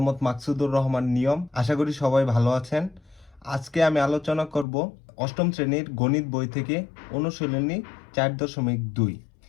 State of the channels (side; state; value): right; drops out; at 4.7 s